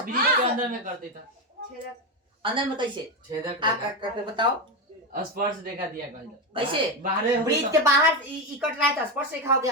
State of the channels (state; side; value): normal; both; correlation 0.13